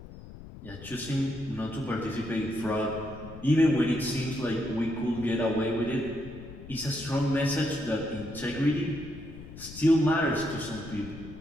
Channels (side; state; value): left; noise; rumble, 15 dB below the sound